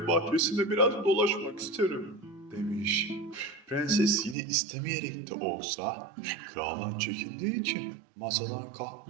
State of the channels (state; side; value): drops out; left; at 4.4 s